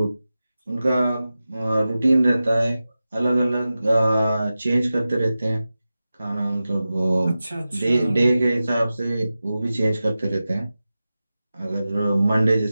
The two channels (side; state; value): both; inverted; correlation -0.94